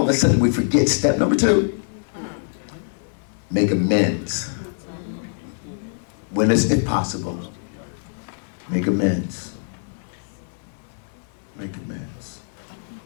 of a sudden we forget step number 2. Make amends. When is it possible? Make amends. Make amends.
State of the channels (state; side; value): silent; right; digital silence